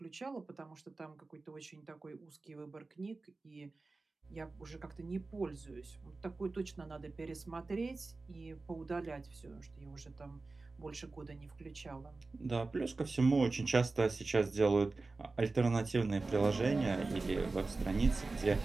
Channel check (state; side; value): quieter; left; 3.6 dB